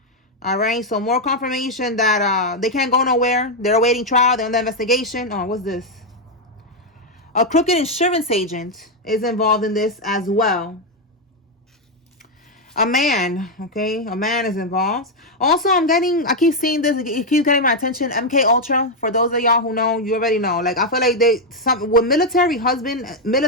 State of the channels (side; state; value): both; normal; correlation 0.02